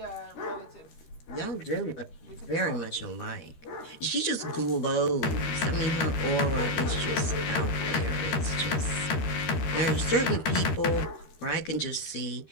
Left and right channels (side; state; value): right; late; 13 ms